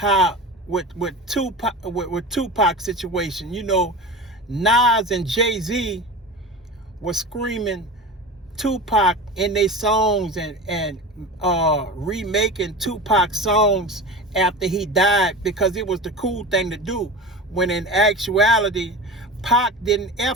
with Tupac situation, you know, Nas and Jay-Z were screaming Tupac in their songs and remaking Tupac songs after he died because it was the cool thing to do, when in actuality Pac didn't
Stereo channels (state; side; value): normal; both; correlation 0.31